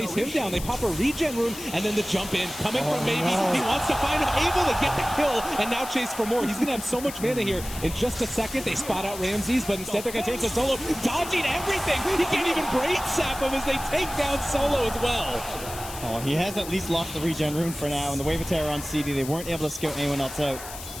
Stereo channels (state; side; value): noise; left; hiss, 12 dB below the sound